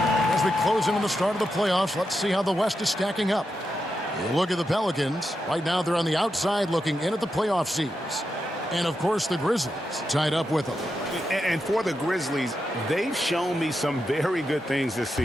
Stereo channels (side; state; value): both; normal; correlation 0.87